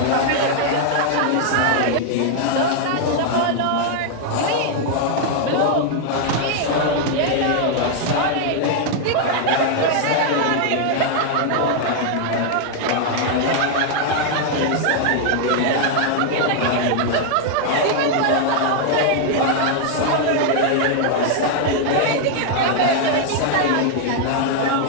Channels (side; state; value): both; different; correlation 0.00